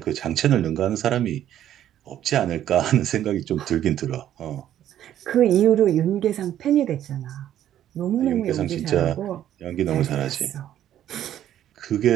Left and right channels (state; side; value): quieter; left; 11.4 dB